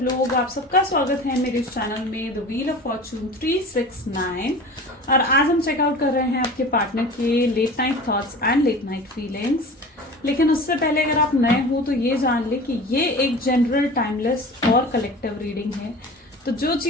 लोग? आप सबका स्वागत है मेरे इस चैनल में द व्हील ऑफ फॉर्चून 369। और आज हम चेकआउट कर रहे हैं आपके पार्टनर के late night thoughts and late night feelings. लेकिन उससे पहले अगर आप नए हो तो ये जान ले कि ये एक जनरल, टाइमलेस और कलेक्टिव रीडिंग है। तो जो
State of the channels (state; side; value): normal; both; correlation 0.37